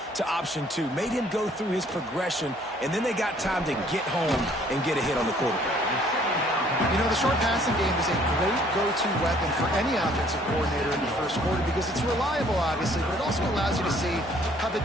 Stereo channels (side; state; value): both; normal; correlation 0.60